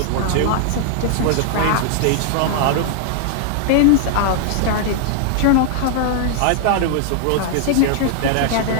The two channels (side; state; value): both; different; correlation 0.00